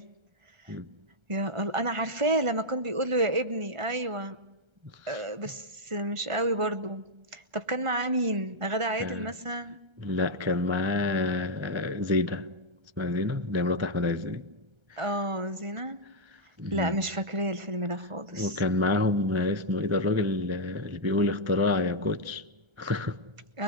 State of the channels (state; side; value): late; left; 1.3 ms